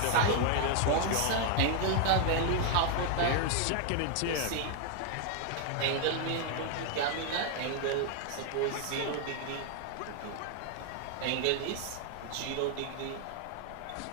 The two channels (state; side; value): different; both; correlation 0.00